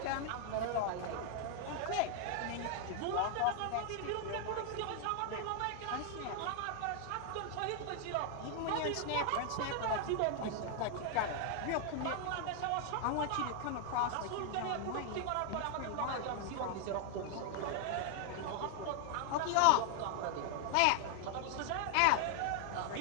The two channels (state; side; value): different; both; correlation 0.00